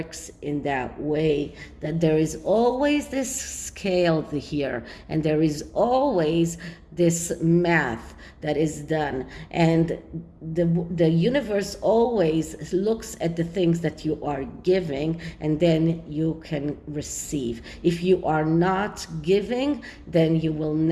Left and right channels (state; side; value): identical; both; correlation 1.00